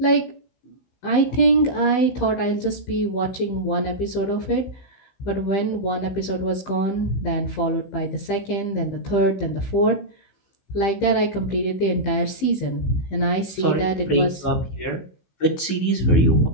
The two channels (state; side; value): late; right; 15 ms